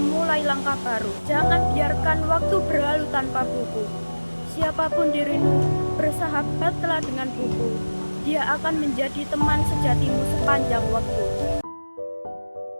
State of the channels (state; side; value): inverted; both; correlation -1.00